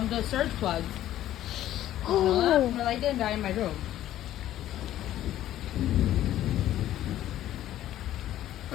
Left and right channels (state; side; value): quieter; right; 13.0 dB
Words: surge plugs. Did you know that? My light didn't die in my room.